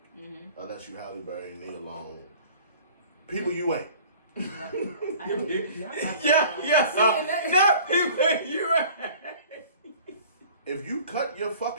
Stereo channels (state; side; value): inverted; both; correlation -0.47